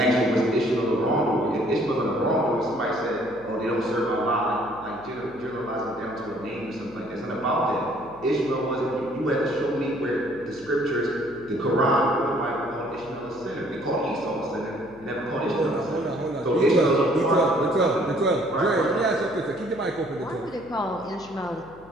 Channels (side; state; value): left; noise; hum, 22 dB below the sound